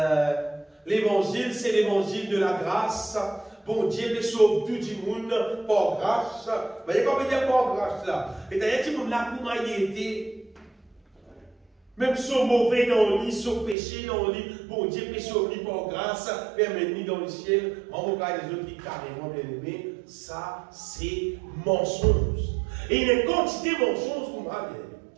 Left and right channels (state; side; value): drops out; left; at 13.8 s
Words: l'évangile, c'est l'évangile de la grâce. Bon Dieu peut sauver tout le monde par grâce. Vous voyez comment dire par grâce là? Et d'ailleurs, tout le monde là, comment il était, même son mauvais dans le lit, son péché dans le lit, bon Dieu peut sauver par grâce, permettre dans le ciel. En tout cas, les autres qui carrément bien aimés, ça c'est mensonge. Et il y a une quantité de mensonges qu'on va bien.